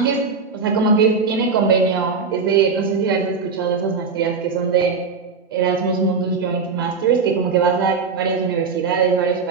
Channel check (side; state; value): left; quieter; 5.0 dB